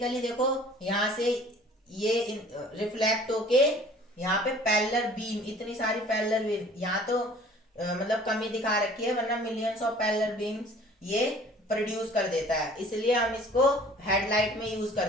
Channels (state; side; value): normal; both; correlation 0.50